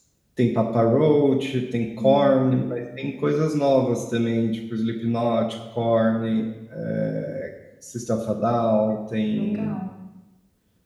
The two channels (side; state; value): both; identical; correlation 1.00